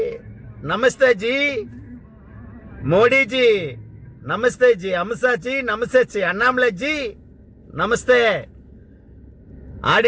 நமஸ்தே ஜி, மோடிஜி நமஸ்தே ஜி, அமித்ஷா ஜி நமஸ்தே ஜி, அண்ணாமலை ஜி நமஸ்தே,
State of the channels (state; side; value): identical; both; correlation 1.00